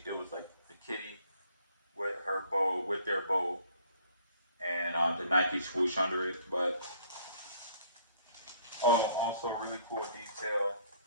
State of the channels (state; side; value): inverted; both; correlation -0.59